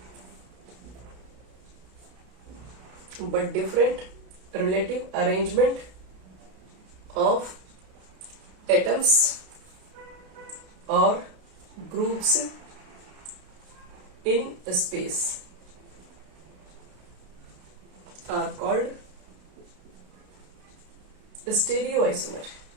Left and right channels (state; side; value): late; left; 32 ms